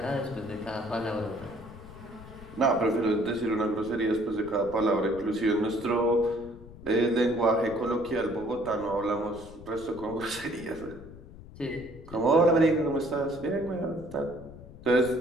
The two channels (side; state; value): left; noise; rumble, 17 dB below the sound